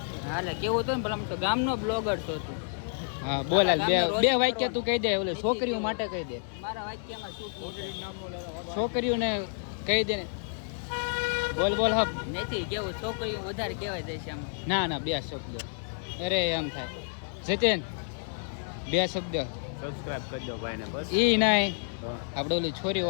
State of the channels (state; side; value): silent; right; digital silence